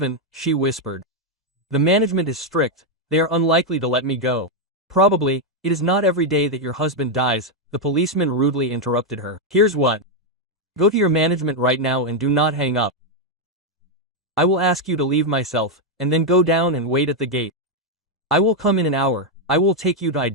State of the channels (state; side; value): normal; both; correlation 0.01